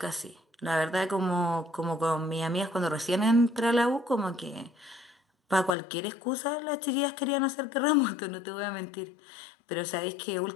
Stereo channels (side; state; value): right; drops out; at 5.8 s